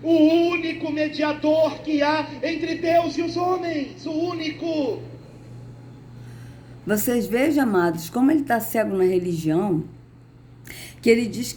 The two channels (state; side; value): identical; both; correlation 1.00